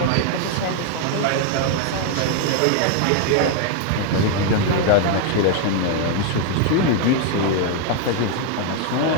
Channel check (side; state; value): both; different; correlation 0.00